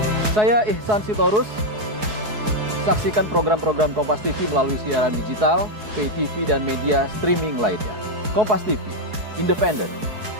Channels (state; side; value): late; left; 4.7 ms